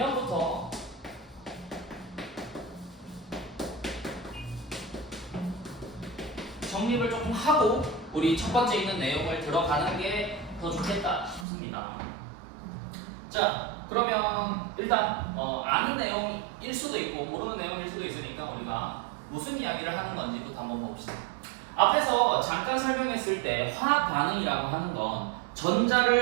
정립을 조금 하고 우리 첫 번째 있는 내용을 들어가는 게 더 좋겠다 싶습니다. 자, 그러면 일단 아는 내용일 수도 있고 모르는 내용일 수도 있으니까 우리가 무슨 이야기를 하는 건지부터 한번 봅시다. 앞에서 잠깐 설명했을 때 화학 반응이라고 하는 건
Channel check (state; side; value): drops out; left; at 11.5 s